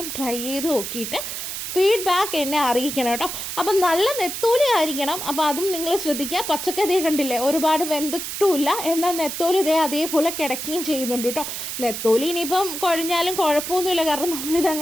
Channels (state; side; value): noise; right; hiss, 6 dB below the sound